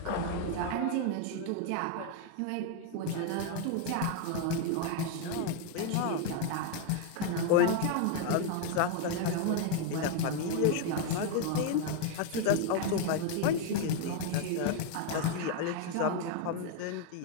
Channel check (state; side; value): different; both; correlation 0.01